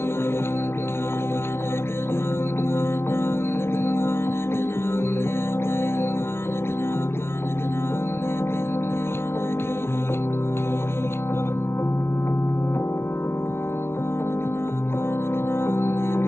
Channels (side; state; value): right; late; 0.12 ms